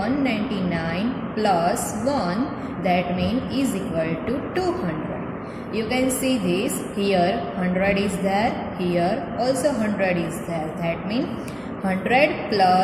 plus 1, that means is equal to 200. You can see this here 100 is there, here also 100 is there. That means 100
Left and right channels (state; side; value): identical; both; correlation 1.00